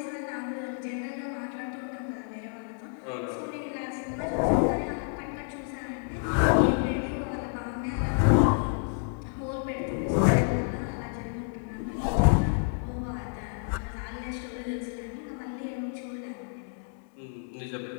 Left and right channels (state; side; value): silent; right; 58 dB below the other